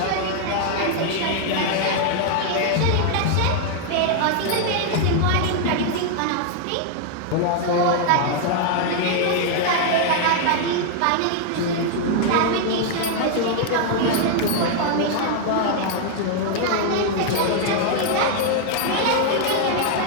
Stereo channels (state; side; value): different; both; correlation 0.00